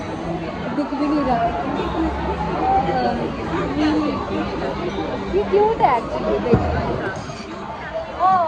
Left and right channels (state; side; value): identical; both; correlation 1.00